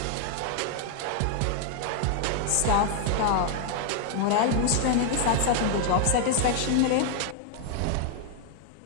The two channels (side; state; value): both; different; correlation 0.00